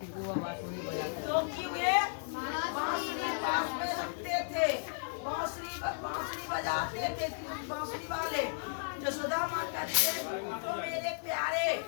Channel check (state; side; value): silent; right; 55 dB below the other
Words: वे बांसुरी पास में रखते थे, बांसुरी बजाते थे बांसुरी वाले। जसोदा माँ कहती है तो मेरे प्यारे